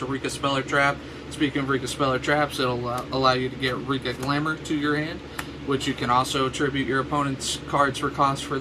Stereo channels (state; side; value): identical; both; correlation 1.00